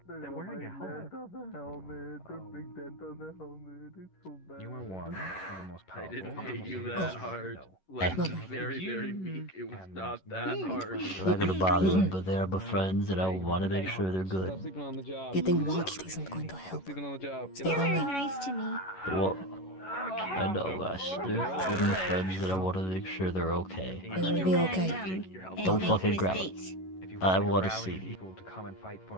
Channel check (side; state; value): right; late; 11 ms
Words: They're wearing a helmet. The big dent on the helmet. It's so bad. You are one of the most powerful. I didn't hit you that hard. Like, very, very weak. It was not that hard. I'm not gonna bother them, but they're my friends, and I want to make sure they're good. Sleeping on the job. Getting watched isn't going to help. Sleeping on the job. Stay lonely. Nice to me. Well, I know, guys. They're my friends, and I want to make sure they're okay. It'll be okay. Don't fucking grab them. I want to see. People to come and fight